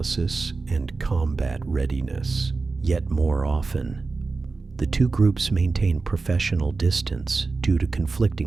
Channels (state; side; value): quieter; left; 4.0 dB